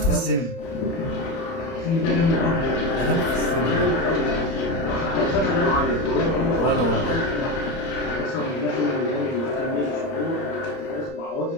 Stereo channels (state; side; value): late; right; 30 ms